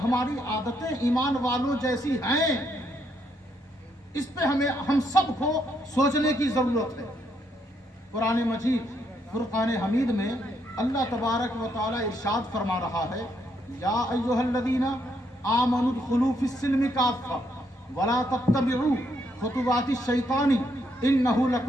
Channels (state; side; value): normal; both; correlation 0.75